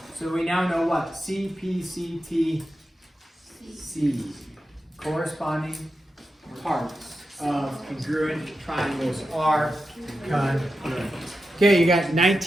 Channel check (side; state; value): both; normal; correlation 0.90